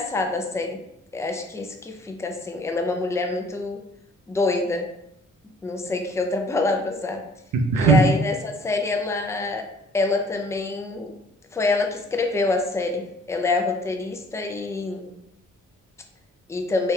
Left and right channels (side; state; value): both; normal; correlation 0.55